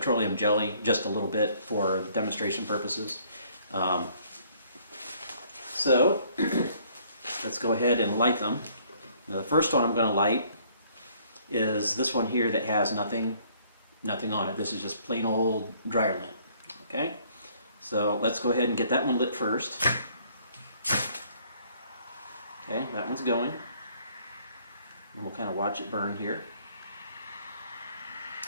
jelly, just a little bit for demonstration purposes. So let's go ahead and light them. Now, the first one I'm going to light is this one here that has nothing on it. This is just plain old dryer lint. Okay, so let's go ahead and get that one lit first. Okay, that one's going. And we'll kind of watch it burn here.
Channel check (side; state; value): both; inverted; correlation -0.62